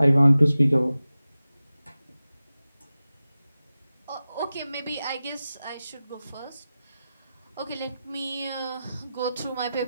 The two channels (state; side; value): inverted; both; correlation -0.94